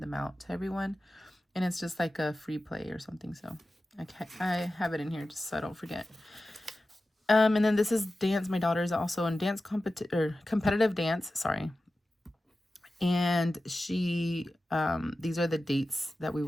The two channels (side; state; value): both; normal; correlation 0.94